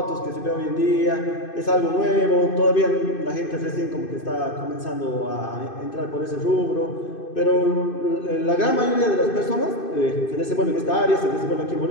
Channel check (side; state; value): right; late; 2.5 ms